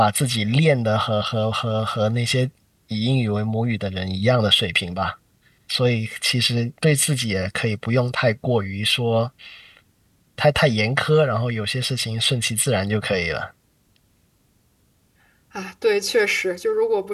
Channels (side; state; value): both; identical; correlation 1.00